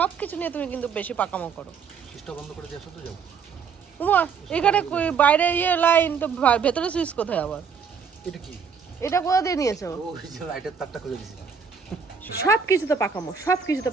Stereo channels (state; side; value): quieter; left; 6.3 dB